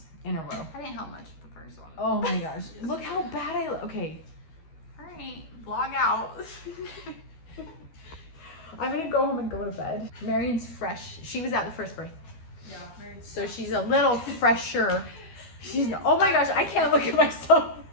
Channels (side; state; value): right; late; 13 ms